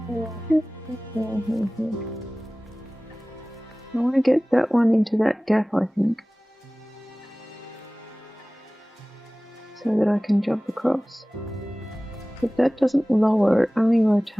want to get that one into that gap, I think, so that I can jump across. But that doesn't lower, it only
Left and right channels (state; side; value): normal; both; correlation 0.98